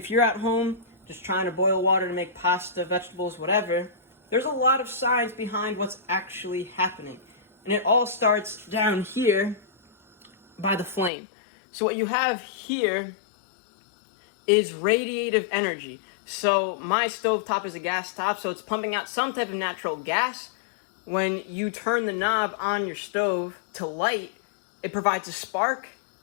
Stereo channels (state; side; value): drops out; right; at 11.1 s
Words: you're at home just trying to boil water to make pasta, vegetables, whatever, there's a lot of science behind what's actually happening. And it all starts down here by the flame. So what you have here is radiative energy. So my stovetop is a gas top, so it's pumping out some type of natural gas. When you turn the knob on your stove to light, it provides a spark,